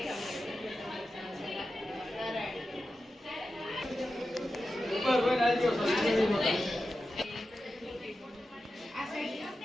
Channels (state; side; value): normal; both; correlation 0.92